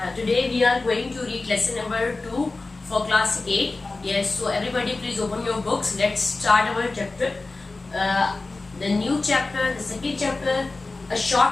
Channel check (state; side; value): quieter; right; 3.4 dB